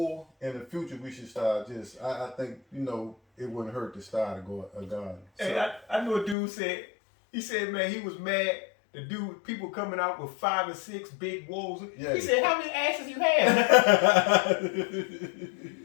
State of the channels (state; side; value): drops out; right; at 6.4 s